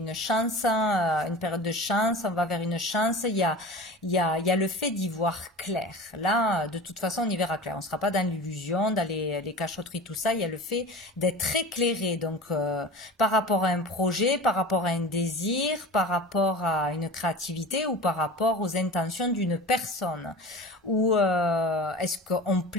chance, une période de chance. On va vers une chance. Il y a le fait d'y voir clair. Là, de toute façon, on y verra clair. On ne sera pas dans l'illusion, dans les cachotteries, tout ça. Il y a le fait d'être éclairé. Donc, par rapport à un projet, par rapport à un désir, par rapport à une créativité ou par rapport aux intentions d'une personne. Ou est-ce qu'on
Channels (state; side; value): normal; both; correlation 0.35